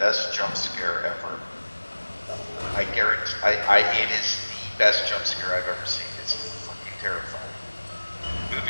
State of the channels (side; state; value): both; inverted; correlation -1.00